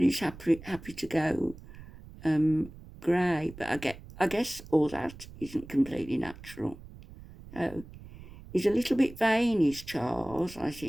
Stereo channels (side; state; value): right; noise; rumble, 17 dB below the sound